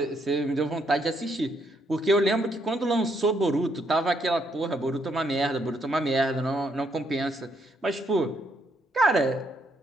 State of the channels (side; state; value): both; normal; correlation 0.74